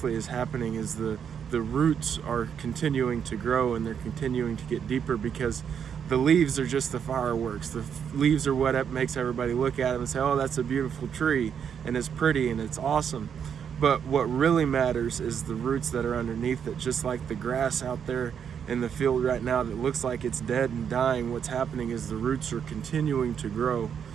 is happening is the roots are continuing to grow, and they're continuing to get deeper, because the leaves are just the fireworks. The leaves are what makes everybody look at them and say, oh, that's a beautiful tree, and it's pretty and it's awesome. But what really matters is the roots that are underneath it. Just like the grass out there in the field right now that looks like it's dead and dying, what's happening is the roots are continuing to grow.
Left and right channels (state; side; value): quieter; left; 7.8 dB